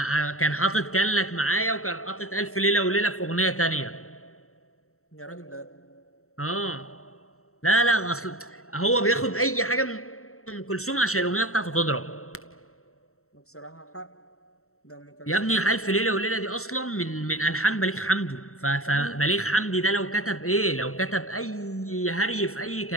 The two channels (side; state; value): right; late; 0.63 ms